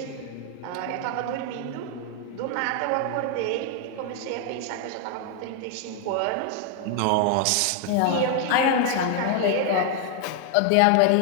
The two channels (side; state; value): both; different; correlation 0.00